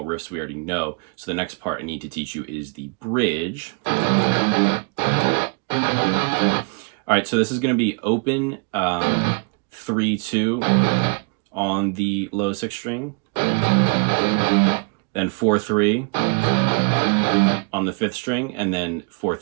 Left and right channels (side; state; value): left; quieter; 36.3 dB